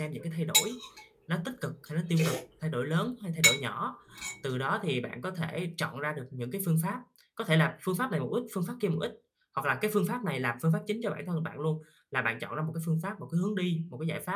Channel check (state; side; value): identical; both; correlation 1.00